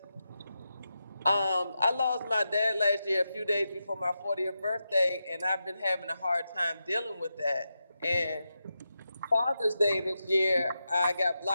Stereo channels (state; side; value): inverted; both; correlation -0.88